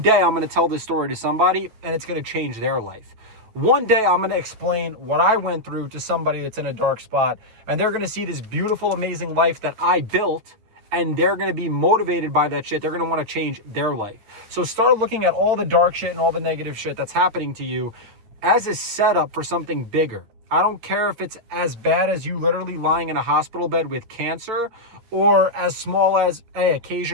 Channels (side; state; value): left; late; 9.4 ms